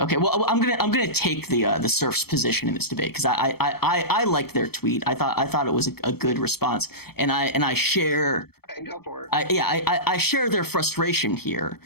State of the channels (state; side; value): late; right; 0.96 ms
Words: Well, I'm gonna take the Surf's position in this debate because I liked their tweet. I thought it was a good response, and I share. Okay, go for it. I share their frustration here,